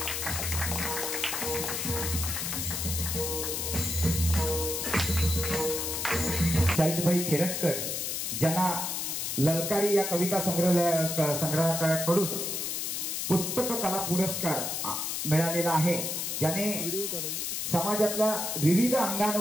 शाहिदभाई खेरटकर ज्यांना ललकारी या कविता संग्रहाकडून पुस्तक कला पुरस्कार मिळालेला आहे, ज्याने समाजातल्या विविध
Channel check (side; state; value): left; noise; hiss, 2 dB below the sound